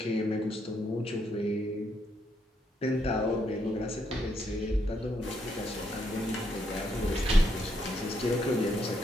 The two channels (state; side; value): normal; both; correlation 0.76